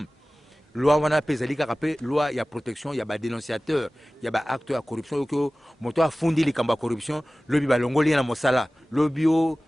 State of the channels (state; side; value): normal; both; correlation 0.97